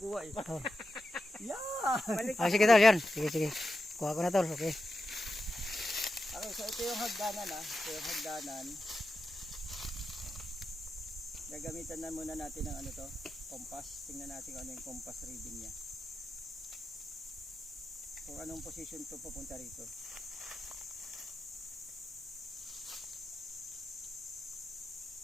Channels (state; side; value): normal; both; correlation 0.89